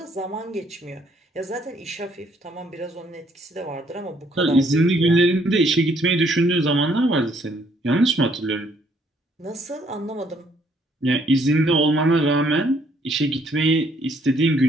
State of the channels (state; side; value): normal; both; correlation 0.67